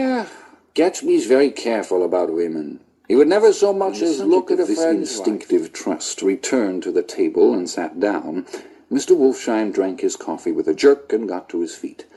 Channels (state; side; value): identical; both; correlation 1.00